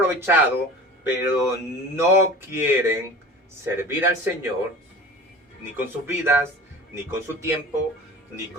pero no quieren servir al Señor, ni con sus vidas, ni con su tiempo, ni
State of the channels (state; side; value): normal; both; correlation 0.38